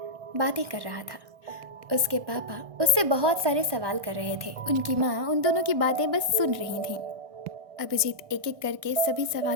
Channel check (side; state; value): left; late; 1.6 ms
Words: बातें कर रहा था। उसके पापा उससे बहुत सारे सवाल कर रहे थे। उनकी माँ उन दोनों की बातें बस सुन रही थी। अभिजीत एक एक करके सभी